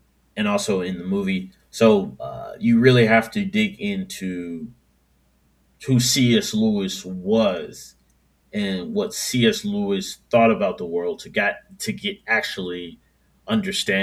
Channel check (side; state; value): both; identical; correlation 1.00